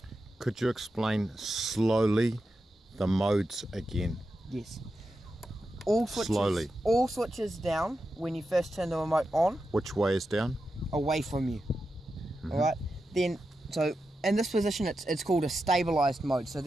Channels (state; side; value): normal; both; correlation 0.89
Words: Could you explain slowly the modes again? Yes. All switches down when you first turn the remote on. Which way is down? Away from you. Alright, then so in this position it's called a stabilized mode, so